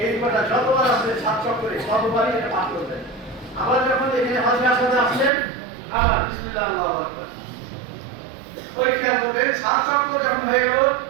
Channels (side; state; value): left; drops out; at 5.3 s